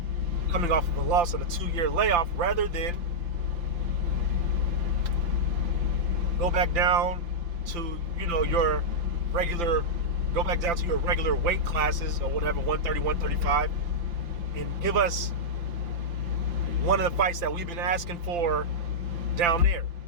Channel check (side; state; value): left; late; 5.8 ms